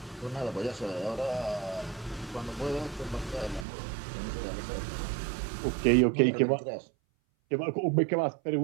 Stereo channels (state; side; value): drops out; left; at 3.7 s